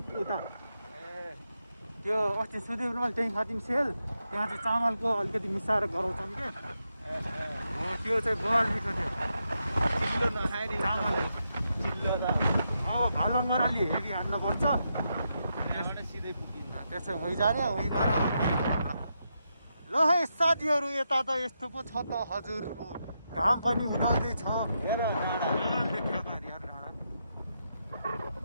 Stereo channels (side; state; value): both; inverted; correlation -0.84